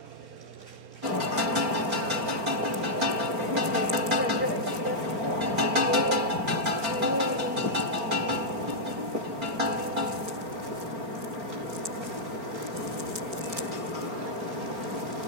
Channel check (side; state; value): left; late; 4.4 ms